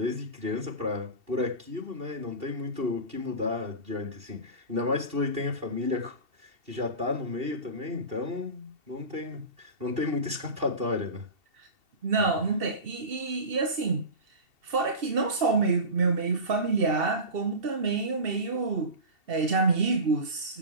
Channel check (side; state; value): left; late; 2.7 ms